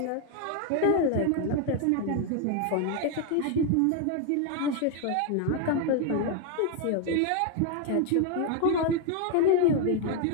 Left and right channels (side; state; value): both; different; correlation 0.01